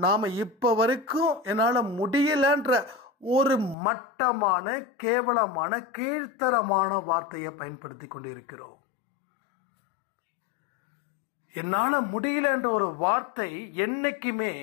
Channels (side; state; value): right; drops out; at 3.8 s